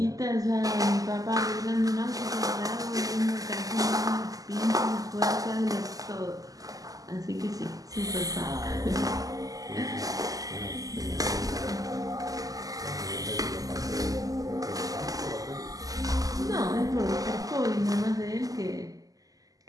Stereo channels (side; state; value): left; late; 0.17 ms